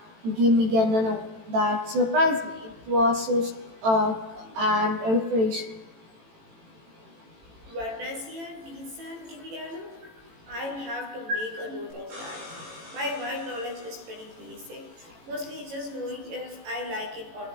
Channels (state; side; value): late; left; 18 ms